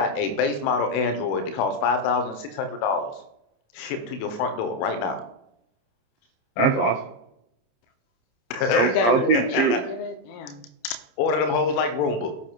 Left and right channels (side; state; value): right; late; 27 ms